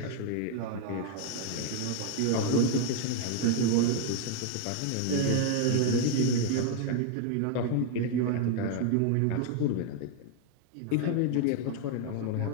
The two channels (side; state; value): both; different; correlation 0.00